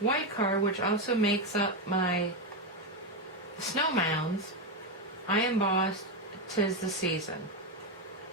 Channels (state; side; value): normal; both; correlation 0.08